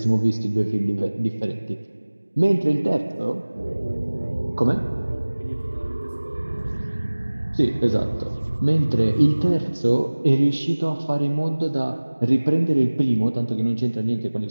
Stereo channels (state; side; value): inverted; both; correlation -1.00